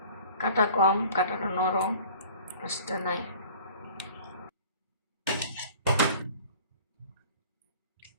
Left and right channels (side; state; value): both; inverted; correlation -0.46